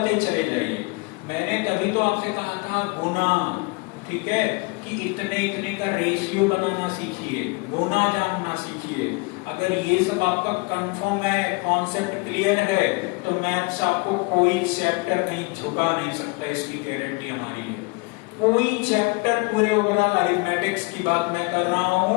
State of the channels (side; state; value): right; quieter; 28.7 dB